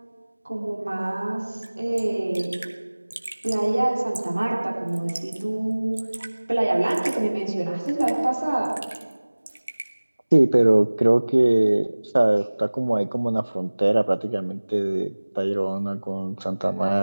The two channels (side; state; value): both; inverted; correlation -1.00